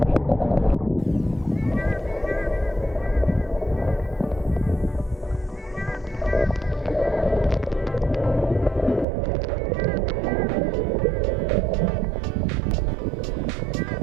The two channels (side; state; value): left; drops out; at 9.1 s